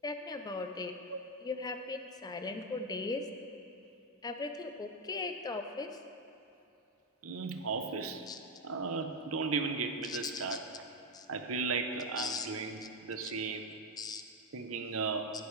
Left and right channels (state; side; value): normal; both; correlation 0.06